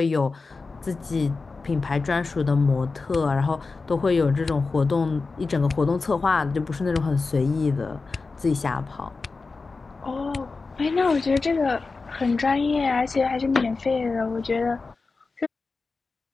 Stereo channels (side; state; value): right; quieter; 4.1 dB